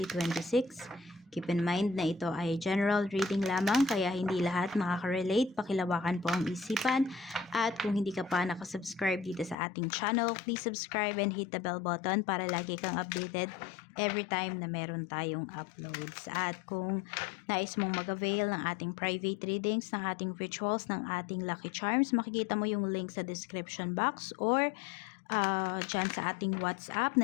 Keep in mind na ito ay general reading lamang, kaya hindi lahat makaka-relate. Pakilawakan po ang isipan. At kung hindi ka pa nakasubscribe dito sa ating channel, please subscribe and hit the bell button para lagi kang updated every time na meron tayong uploads. At kung nais mong mag-avail ng ating private readings, ng ating rituals, ng ating lucky charms, makikita mo yung link sa description box or dyan sa ating WhatsApp,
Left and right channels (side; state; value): right; drops out; at 9.6 s